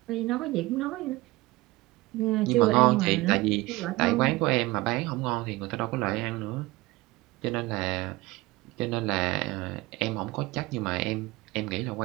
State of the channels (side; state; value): left; quieter; 20.4 dB